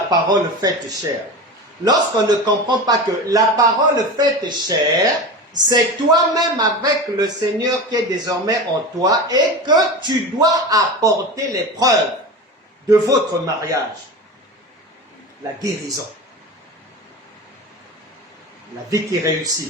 faite chair, lorsqu'on ne comprend pas que la parole faite chair, c'est toi-même avec le Seigneur qui est désormais en toi et que tu dois apporter les preuves de votre mariage. La guérison, la vie qui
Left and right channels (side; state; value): both; normal; correlation 0.28